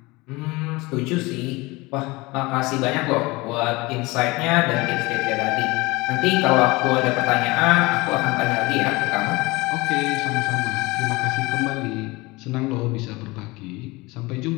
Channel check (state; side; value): quieter; right; 23.0 dB